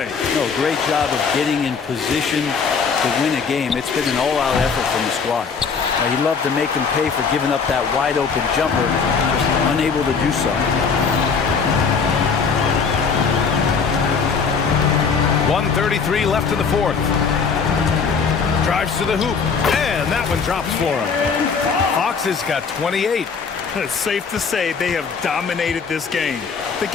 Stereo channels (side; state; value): right; quieter; 5.6 dB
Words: No, great job of getting in position to win a game. It's been an all-out effort from the squad. He'd love to make them pay for giving up that wide-open jumper, just unable to do so. 1:33 left in the fourth. Drives to the hoop, and that one drops for him. Fox has got 28. It's safe to say they have dominated this game. The